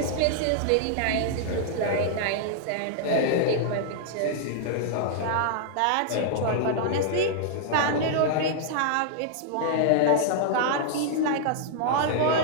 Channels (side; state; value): both; different; correlation -0.01